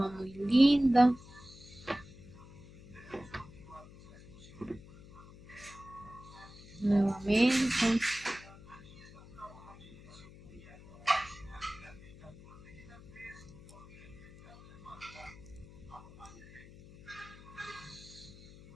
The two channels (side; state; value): left; noise; hum, 19 dB below the sound